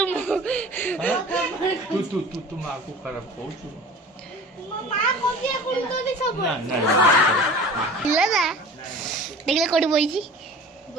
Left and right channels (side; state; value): both; normal; correlation 0.40